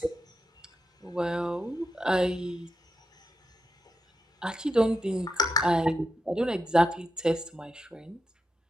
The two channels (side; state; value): both; normal; correlation 0.86